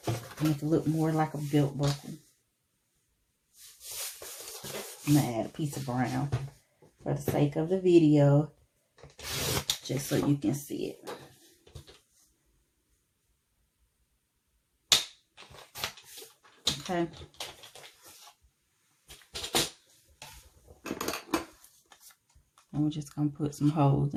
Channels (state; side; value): identical; both; correlation 1.00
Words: make it look more like a belt buckle. I'm gonna add a piece of brown for the sake of the video, just so you can see it. Okay. And we're just going to put some holes